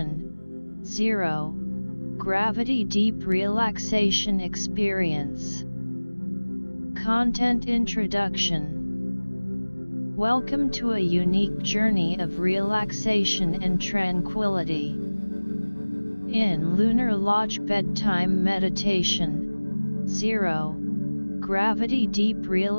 0. Gravity Deep Relaxation Experience. Content Introduction. Welcome to a unique journey of relaxation and tranquility. In Lunar Lodge Bedtime Meditation 0. Gravity Deep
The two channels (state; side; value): inverted; both; correlation -1.00